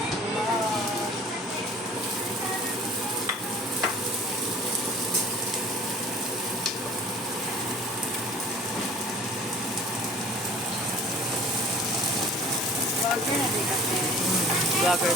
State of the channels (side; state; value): both; normal; correlation 0.47